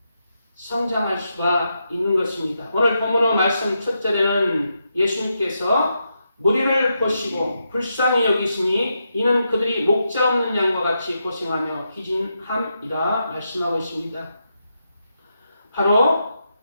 성장할 수가 있는 것입니다. 오늘 본문의 말씀 첫 절에는 예수님께서 무리를 보시고 불쌍히 여기시니 이는 그들이 목자 없는 양과 같이 고생하며 기진함이라 말씀하고 있습니다. 바로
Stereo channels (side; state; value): both; inverted; correlation -0.84